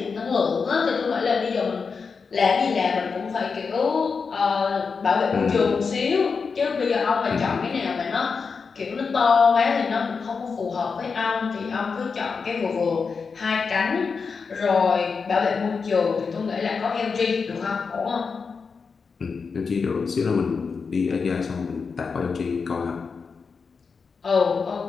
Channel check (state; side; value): quieter; right; 5.2 dB